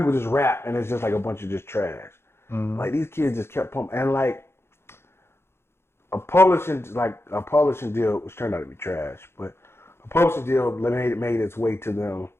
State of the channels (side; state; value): right; late; 0.12 ms